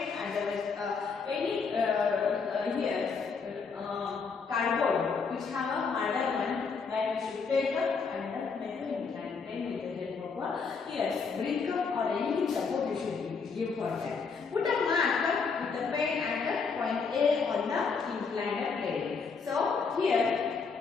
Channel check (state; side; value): quieter; right; 5.2 dB